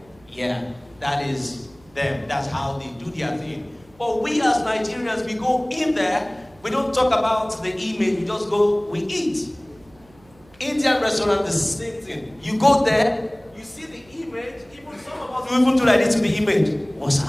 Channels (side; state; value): right; noise; hum, 28 dB below the sound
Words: Yeah, that is them. That's how they do their thing. But we as Nigerians, we go in there, we don't talk about the image, we just go, we eat. Indian restaurant, the same thing. You go there, you see the image, even some of us will even do like this to the image. What's up?